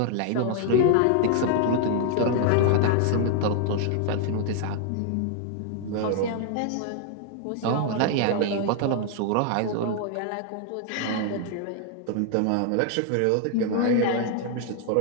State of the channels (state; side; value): different; both; correlation 0.00